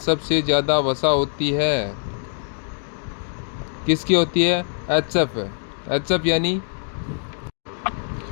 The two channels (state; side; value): silent; right; digital silence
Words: ज़्यादा वसा होती है? किसकी होती है? एचएफ यानी